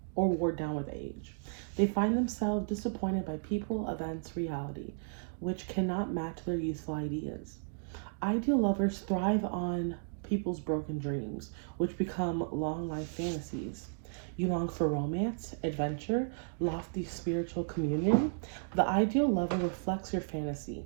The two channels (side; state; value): left; silent; digital silence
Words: with age. They find themselves disappointed by people, events, reality, which cannot match their youthful ideas. Ideal lovers thrive on people's broken dreams, which become long life fantasies. You long for romance, adventure, lofty spiritual communion. The ideal lover reflects your fantasy.